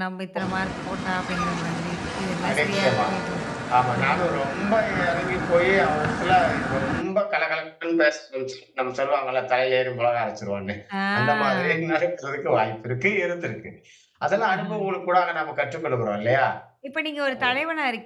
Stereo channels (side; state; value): both; identical; correlation 1.00